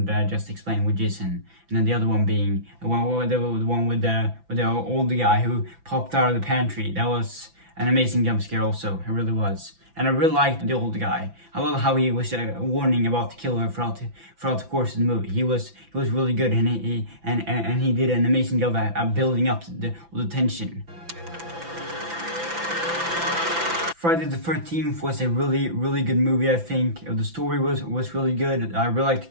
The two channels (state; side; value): late; left; 5.9 ms